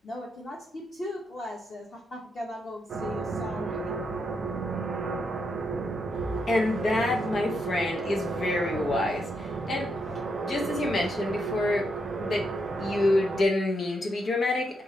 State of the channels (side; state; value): both; normal; correlation 0.80